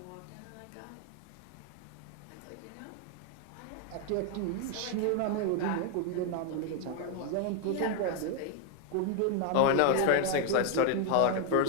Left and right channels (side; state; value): both; different; correlation 0.01